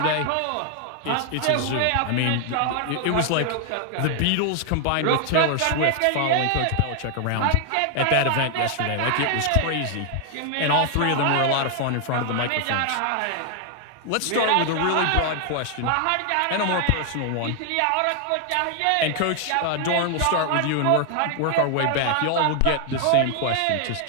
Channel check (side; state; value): both; different; correlation 0.00